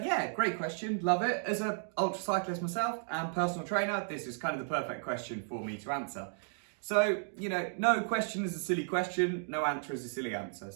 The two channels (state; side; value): silent; left; digital silence